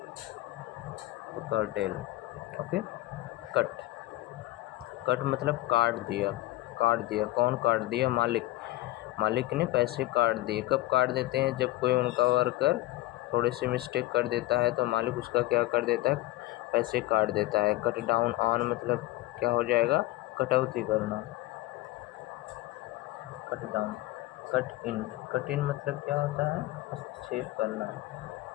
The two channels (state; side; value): quieter; right; 17.7 dB